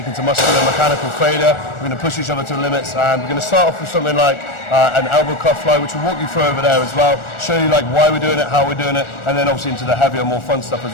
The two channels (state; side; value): late; right; 1.4 ms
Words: to muscular and mechanical failure. We're going to push each other to the limits, and we're going to start off with something like an elbow cuff fly, which we'll walk you through over there as well. Show you like why we're doing it, how we're doing it, and then obviously into the heavier, more fun stuff